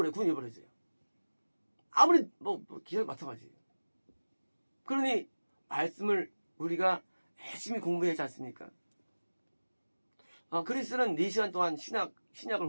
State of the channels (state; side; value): inverted; both; correlation -1.00